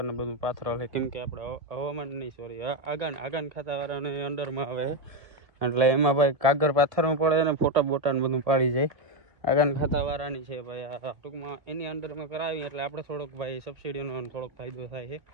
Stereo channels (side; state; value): left; late; 1.7 ms